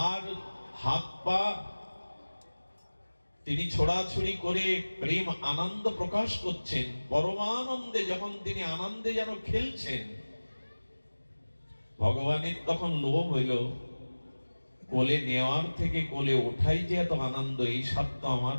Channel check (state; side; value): inverted; both; correlation -1.00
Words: আর হাত পা তিনি ছোড়াছুড়ি করে প্রেম আনন্দ প্রকাশ করছেন, পরমানন্দে যখন তিনি আনন্দে যেন খেলছেন, ভগবানের তখন লোভ হইল, কোলে নেওয়ার থেকে কোলে ওঠাই যে এত আনন্দ, এই স্বাদ তো আমার